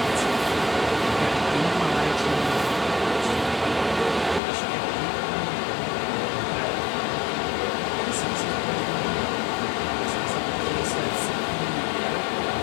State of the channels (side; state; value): right; drops out; at 4.4 s